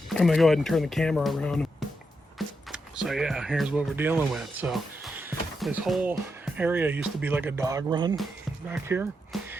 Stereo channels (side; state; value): both; normal; correlation 0.84